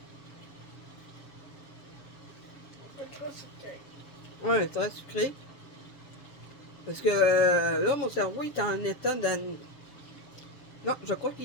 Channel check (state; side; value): late; right; 7.1 ms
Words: C'est trop sucré. Oui, très sucré. Parce que là, mon cerveau est en état de... Non, je crois qu'il